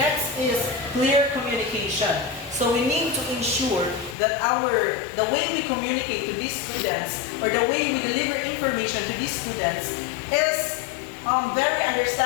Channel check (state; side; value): drops out; right; at 4.2 s